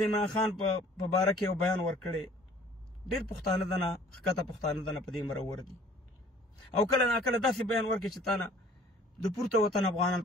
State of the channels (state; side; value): normal; both; correlation 0.53